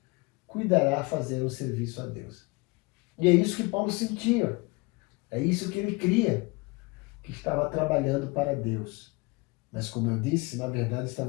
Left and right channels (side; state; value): right; quieter; 25.5 dB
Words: cuidará fazer o serviço a Deus. E é isso que Paulo sentia. É isso que ele cria, que estava trabalhando para Deus. Mas, como eu disse, na verdade